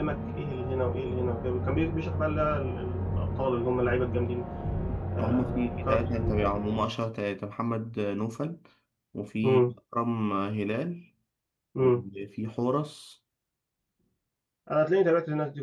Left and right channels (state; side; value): identical; both; correlation 1.00